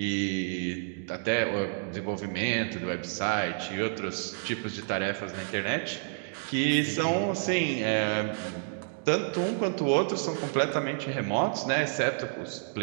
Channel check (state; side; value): silent; left; digital silence